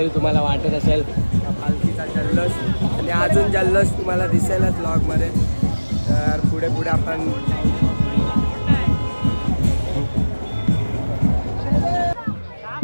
तुम्हाला वाटत असेल पालखीचा जल्लोष आणि अजून जल्लोष तुम्हाला दिसेलच ब्लॉगमध्ये. तर पुढे पुढे आपण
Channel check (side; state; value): both; inverted; correlation -1.00